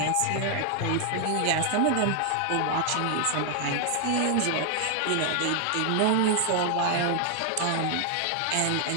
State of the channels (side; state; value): both; different; correlation 0.00